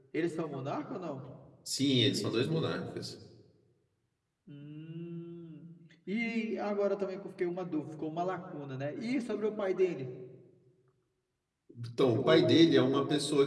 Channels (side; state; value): both; identical; correlation 1.00